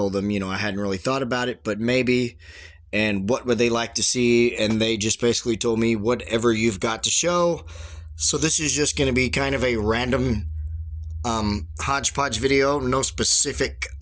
them, I hadn't really thought about it, but maybe. And what would they like to see? And they just basically told me, whatever you've got to show. So, this is just going to be kind of a random hodgepodge video, no specific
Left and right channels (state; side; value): identical; both; correlation 1.00